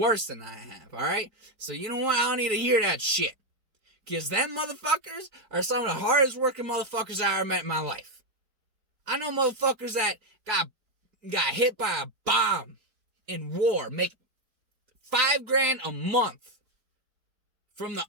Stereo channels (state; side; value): late; left; 4.7 ms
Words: than I have, alright? So you know what? I don't need to hear that shit. Because them motherfuckers are some of the hardest working motherfuckers I ever met in my life. I know motherfuckers that got hit by a bomb in war, make $5,000 a month from the